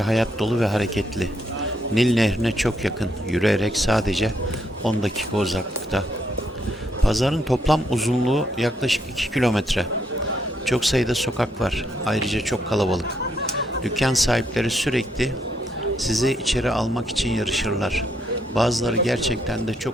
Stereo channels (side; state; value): both; normal; correlation 0.75